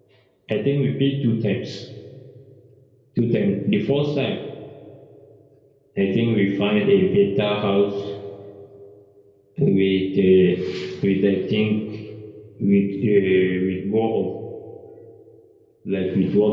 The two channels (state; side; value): identical; both; correlation 1.00